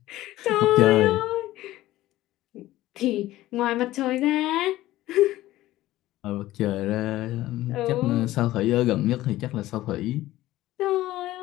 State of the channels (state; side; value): quieter; right; 15.8 dB